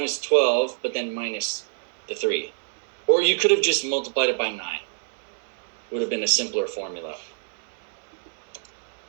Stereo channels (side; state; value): left; silent; digital silence